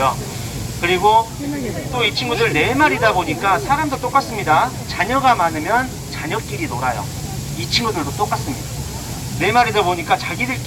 그리고 또 이 친구들 4마리다 보니까 사람도 똑같습니다. 자녀가 많으면 자녀끼리 놀아요. 이 친구들도 똑같습니다. 4마리다 보니까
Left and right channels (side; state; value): both; identical; correlation 1.00